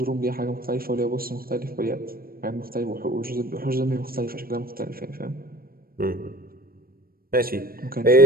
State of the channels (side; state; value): left; late; 0.43 ms